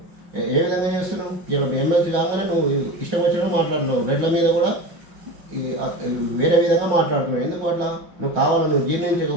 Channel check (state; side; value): late; left; 5.6 ms